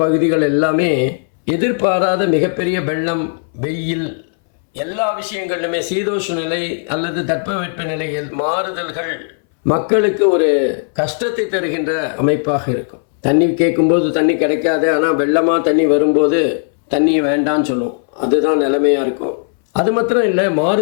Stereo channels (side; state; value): right; silent; 64 dB below the other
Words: பகுதிகள் எல்லாமே எதிர்பாராத மிகப்பெரிய வெள்ளம், வெயில், எல்லா விஷயங்களிலுமே சீதோஷ்ண நிலை அல்லது தட்பவெட்ப நிலையில் மாறுதல்கள் மக்களுக்கு ஒரு கஷ்டத்தை தருகின்ற அமைப்பாக இருக்கும். தண்ணி கேட்கும்போது தண்ணி கிடைக்காது, ஆனால் வெள்ளமாக தண்ணி வரும்போது தண்ணி வேண்டான்னு சொல்லும். அதுதான் நிலைமையாக இருக்கும். அது மாத்திரம் இல்லை,